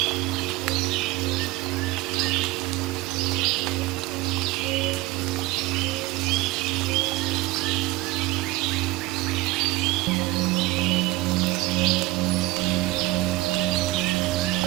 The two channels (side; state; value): left; quieter; 19.5 dB